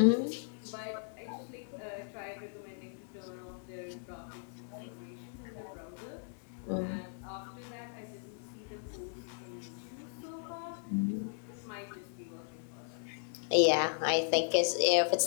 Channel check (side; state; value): right; silent; digital silence